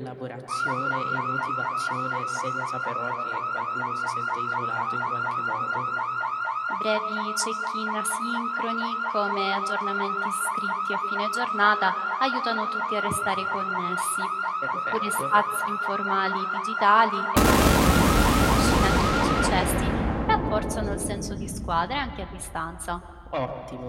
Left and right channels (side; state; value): both; identical; correlation 1.00